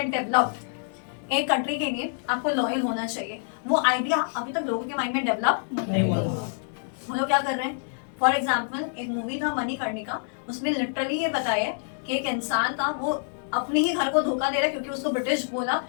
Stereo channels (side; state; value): right; silent; digital silence